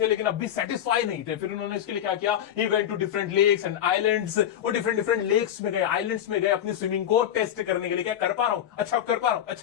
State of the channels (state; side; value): quieter; right; 10.4 dB